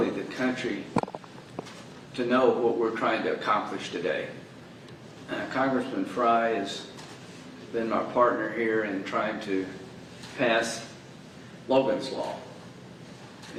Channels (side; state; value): both; identical; correlation 1.00